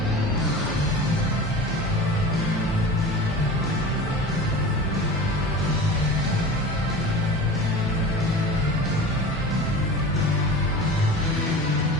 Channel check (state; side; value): normal; both; correlation 0.35